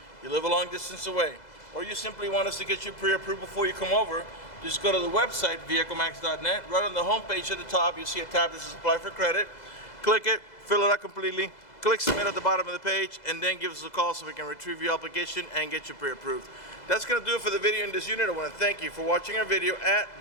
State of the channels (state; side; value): late; right; 2.0 ms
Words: you live a long distance away, or you simply want us to get you pre-approved before you come over, just go to the website, vehiclemax.net. Right on the home page at the top, you'll see a tab that says Apply for Credit. Click it, fill it out completely, click Submit at the bottom of the page, and then give us a call so we can retrieve your application and get you pre-approved. That's going to do it for the video in this unit. I want to thank you for watching our video at